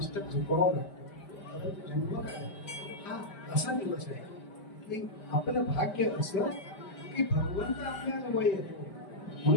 झुकवावं लागतं. परंतु जन्मकाळ हा असा दिवस आहे की आपलं भाग्य असं की भगवंत आपल्या जवळ येतो.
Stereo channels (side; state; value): right; late; 5.1 ms